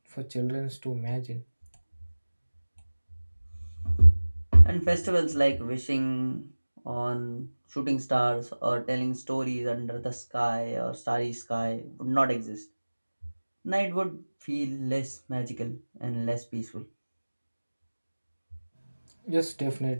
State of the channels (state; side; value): inverted; both; correlation -1.00